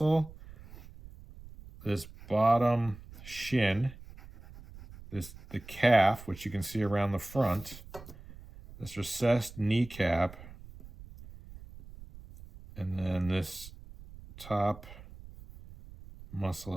this bottom shin, the calf, which you can see around the front, this recessed kneecap, and then this top muscle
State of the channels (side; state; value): right; noise; rumble, 17 dB below the sound